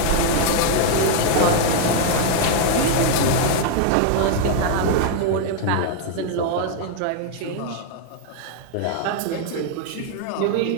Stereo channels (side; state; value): both; different; correlation 0.00